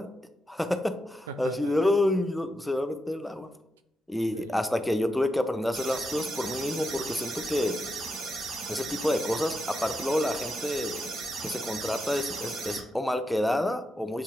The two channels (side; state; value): both; normal; correlation 0.85